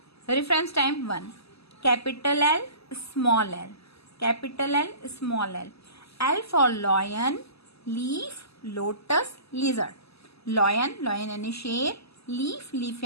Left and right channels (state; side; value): late; right; 0.78 ms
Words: Reference time 1, capital L small L, capital L small L. L for lion, leaf lotus lizard. Lion, lion यानी शेर, लीफ, लीफ